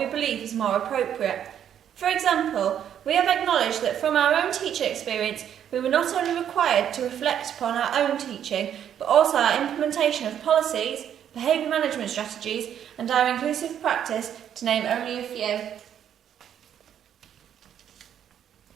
believe is more appropriate. For example, we have acknowledged that from our own teacher experience, we were not only required to reflect upon our own teaching, but also our implementation of policies, behaviour management strategies, and our inclusive practice, to name only a few.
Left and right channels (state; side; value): quieter; left; 9.6 dB